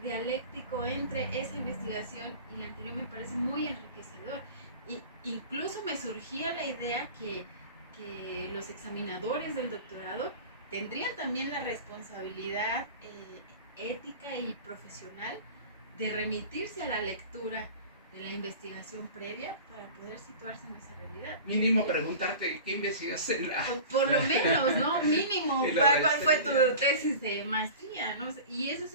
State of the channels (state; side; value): inverted; both; correlation -0.37